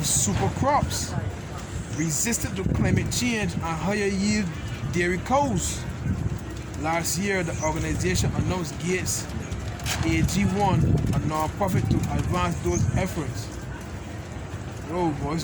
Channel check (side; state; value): both; identical; correlation 1.00